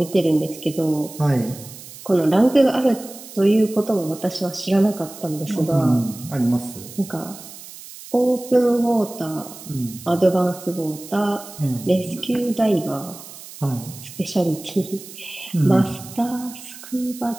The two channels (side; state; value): right; noise; hiss, 16 dB below the sound